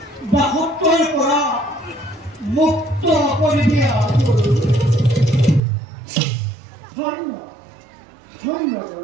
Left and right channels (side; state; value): left; drops out; at 5.6 s